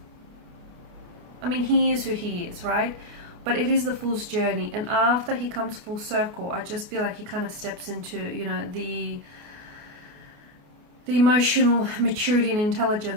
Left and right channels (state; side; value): late; left; 29 ms